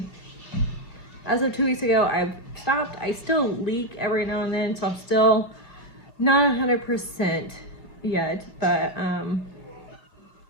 as of 2 weeks ago, I've stopped. I still leak every now and then, so I'm still not 100% yet, but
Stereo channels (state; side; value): late; right; 2.4 ms